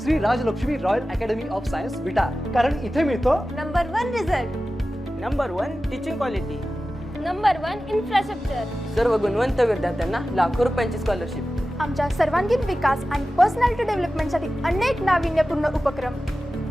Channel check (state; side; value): normal; both; correlation 0.95